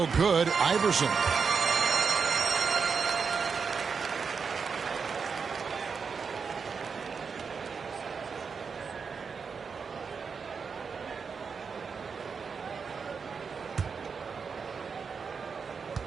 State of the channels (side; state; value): left; quieter; 5.6 dB